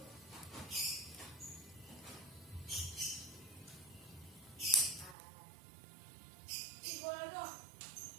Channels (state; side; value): drops out; left; at 5.2 s